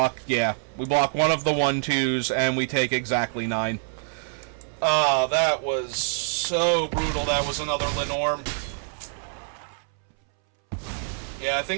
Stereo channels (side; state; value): left; silent; 61 dB below the other